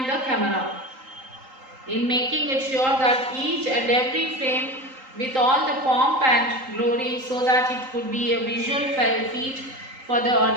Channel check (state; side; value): late; left; 3.8 ms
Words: the camera, in making it sure that each and every frame with all the pomp and glory so that it could be a visual feat for the